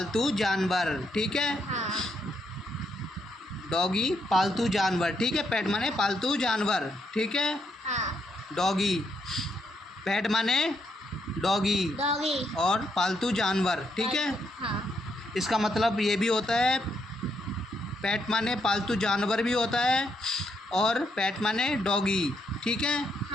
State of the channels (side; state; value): both; normal; correlation 0.77